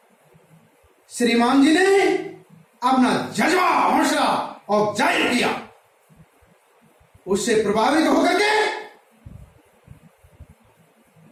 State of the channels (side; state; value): both; identical; correlation 1.00